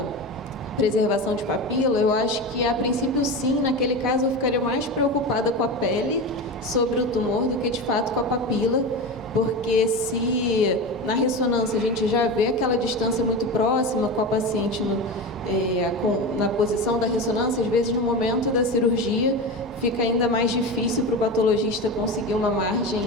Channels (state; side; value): normal; both; correlation 0.24